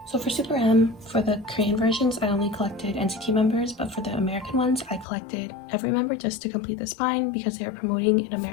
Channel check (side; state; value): right; drops out; at 5.1 s